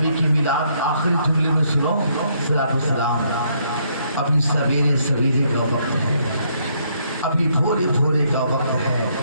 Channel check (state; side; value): inverted; both; correlation -0.71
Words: کی میلاد آخری جملے میں سنو، صلاۃ والسلام، ابھی سویرے سویرے کا وقت ہے، ابھی بھورے بھورے کا وقت ہے،